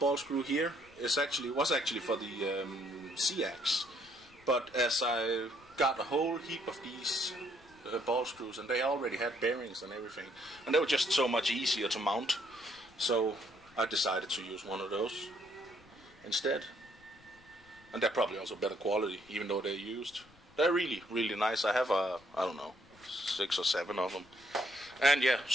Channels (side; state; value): left; noise; rumble, 27 dB below the sound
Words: screw here was actually for the C-ax, but as I got a whole heap of these ball screws, and they already had bearings and everything, and they were just so much easier to mount, so I decided to use one of those instead. And they're probably also better quality, even though they're used. They're really, really nice. I have I don't know, 6 or 7 of them. And yeah,